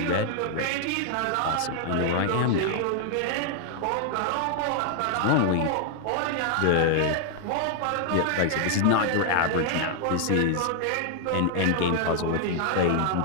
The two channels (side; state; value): both; different; correlation 0.00